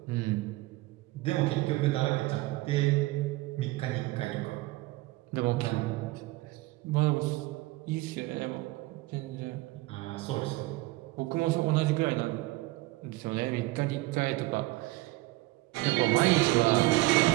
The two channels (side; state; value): left; quieter; 20.0 dB